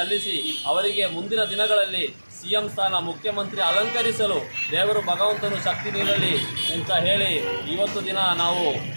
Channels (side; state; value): both; inverted; correlation -1.00